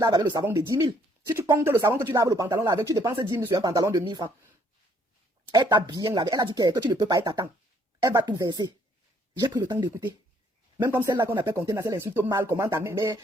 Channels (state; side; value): normal; both; correlation 0.65